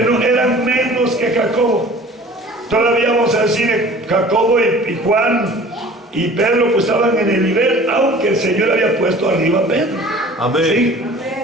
eran menos que Jacobo. Todavía vamos a decir, Jacobo y Juan y Pedro pues estaban en el nivel, aunque el Señor había puesto arriba a Pedro. Amén. ¿Sí?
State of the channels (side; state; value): both; normal; correlation 0.46